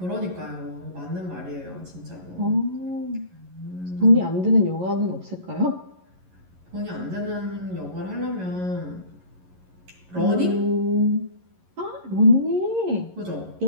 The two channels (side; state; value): left; late; 11 ms